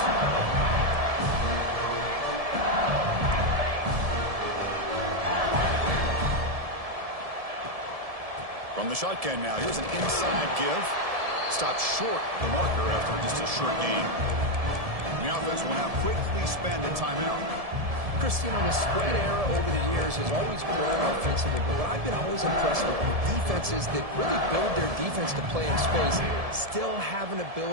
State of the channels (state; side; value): late; left; 1.7 ms